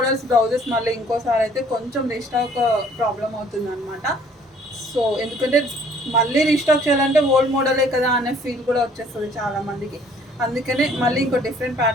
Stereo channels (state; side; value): normal; both; correlation 0.58